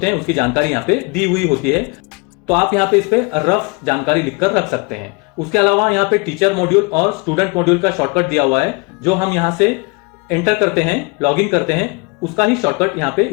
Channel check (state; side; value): quieter; right; 28.7 dB